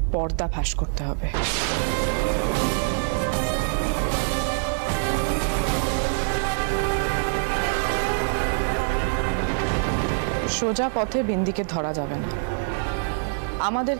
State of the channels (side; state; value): left; silent; 62 dB below the other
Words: পর্দা ফাঁস করতে হবে। সোজা পথে বিন্দিকে ধরা যাবে না,